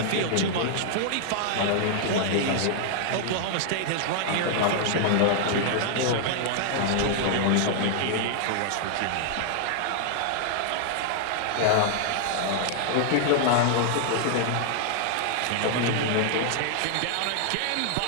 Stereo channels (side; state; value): both; different; correlation 0.00